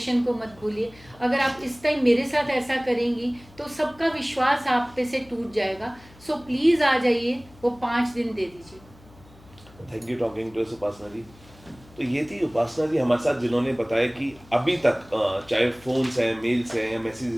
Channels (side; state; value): left; noise; hum, 24 dB below the sound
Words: को मत भूलिए। अगर आप इस टाइम मेरे साथ ऐसा करेंगी तो सबका विश्वास आप पे से टूट जाएगा। सो प्लीज़ आ जाइए, वो 5 दिन दे दीजिए। Thank you talking to us Upasana ji. तो ये थी उपासना जी हमारे साथ, जिन्होंने बताया कि अभी तक चाहे फ़ोन्स हैं, मेल्स हैं या